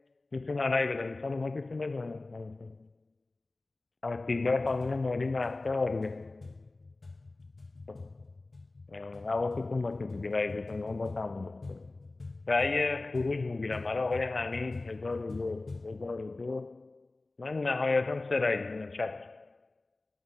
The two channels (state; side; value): quieter; right; 3.2 dB